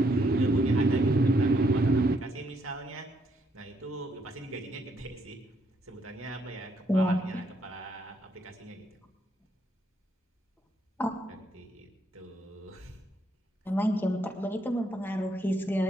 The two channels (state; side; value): normal; both; correlation 0.73